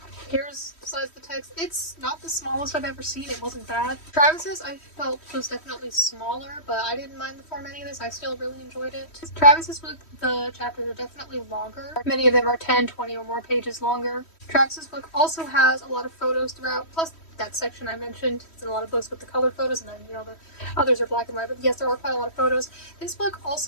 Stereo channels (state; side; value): late; right; 3.1 ms